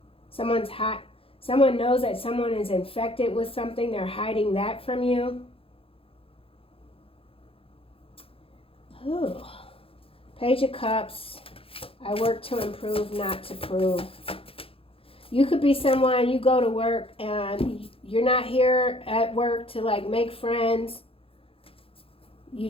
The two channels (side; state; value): right; late; 0.27 ms